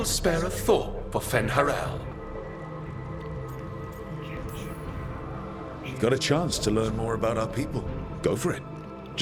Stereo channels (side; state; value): both; identical; correlation 1.00